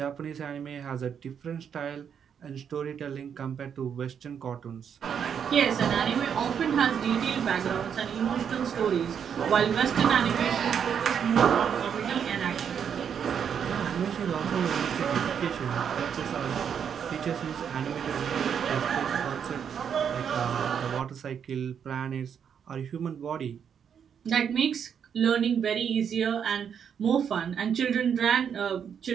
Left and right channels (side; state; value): left; quieter; 7.8 dB